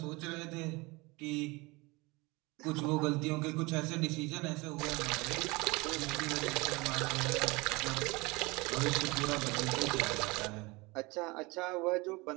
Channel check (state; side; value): quieter; left; 24.6 dB